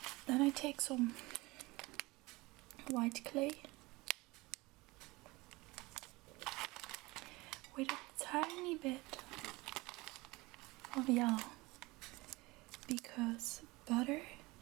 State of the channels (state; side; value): quieter; left; 22.4 dB